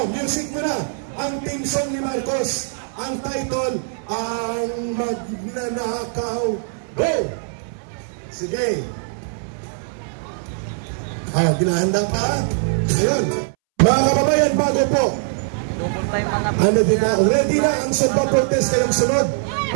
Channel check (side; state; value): left; silent; 65 dB below the other